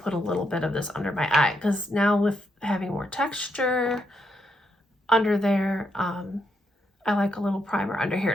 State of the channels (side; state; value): both; normal; correlation 0.79